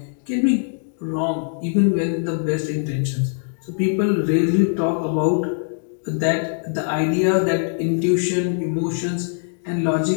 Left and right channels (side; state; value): right; silent; digital silence